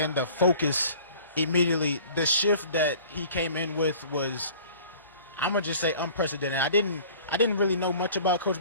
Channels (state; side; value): inverted; both; correlation -0.47